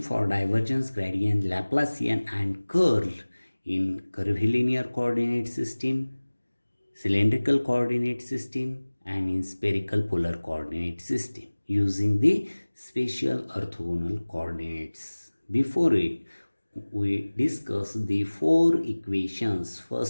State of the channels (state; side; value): inverted; both; correlation -1.00